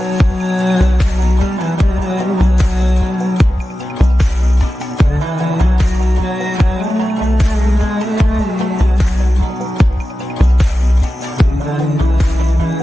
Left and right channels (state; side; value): normal; both; correlation 0.93